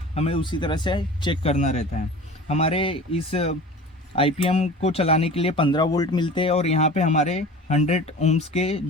हमें उसी तरह से चेक करना रहता है। हमारे इस आईपीएम को चलाने के लिए 15 वोल्ट मिलते हैं और यहाँ पे हमारे 100 ओम्स के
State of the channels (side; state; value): both; normal; correlation 0.39